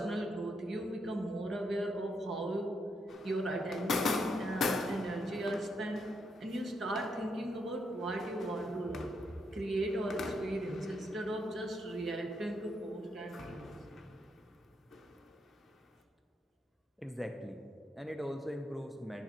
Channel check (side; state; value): both; normal; correlation 0.78